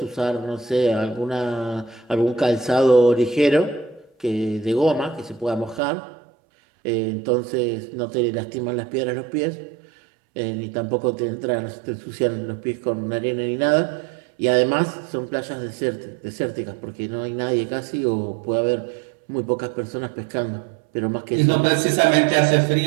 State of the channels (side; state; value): left; drops out; at 5.8 s